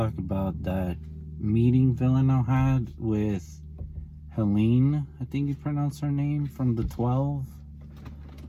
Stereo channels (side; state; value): both; identical; correlation 1.00